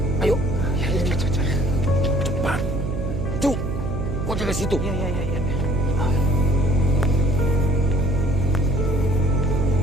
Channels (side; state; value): right; noise; hum, 5 dB below the sound